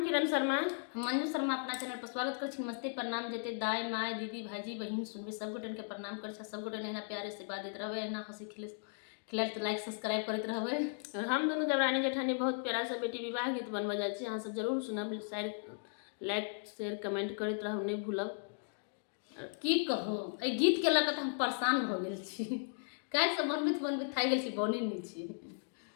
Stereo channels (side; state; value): right; silent; digital silence